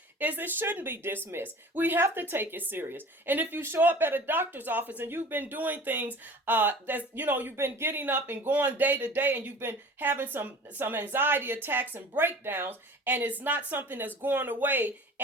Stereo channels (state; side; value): normal; both; correlation 0.42